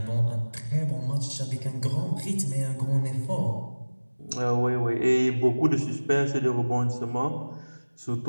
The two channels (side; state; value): both; inverted; correlation -1.00